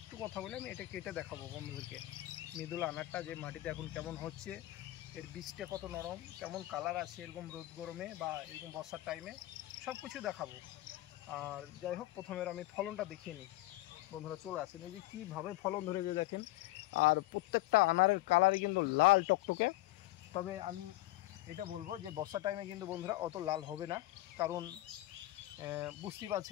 কথা বলে আমি এটা কেটে দেখাবো বন্ধুদেরকে। মৃদুলা আনারটা যে মাটিতে এখন কেমন হচ্ছে, এর বীজটা কত নরম, কেমন কালার আছে এরকম রোদ গরমে বা এরকম বর্ষার টাইমে, সব কিছু দেখাবো। আর যাই হোক, প্রথমে আমি ফলনটা দেখিয়ে নিই। বন্ধুরা চলে আসেন, এই যে কীভাবে ফলন ধরেছে দেখেন। আর প্রত্যেকটা আনারের কালারই কিন্তু লাল টকটকে। তবে আমি এটা বলবো যে বর্ষার টাইমে কিন্তু বন্ধুরা অত লাল হবে না, কারণ বুঝতেই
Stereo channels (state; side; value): quieter; right; 17.8 dB